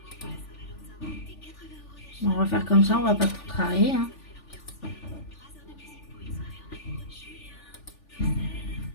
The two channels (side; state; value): right; late; 3.4 ms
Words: On va faire comme ça, on va pas trop travailler, hein.